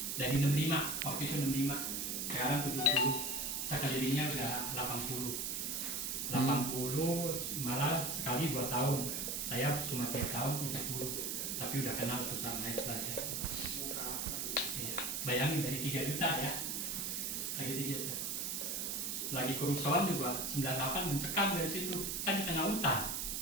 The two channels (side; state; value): right; noise; hiss, 1 dB below the sound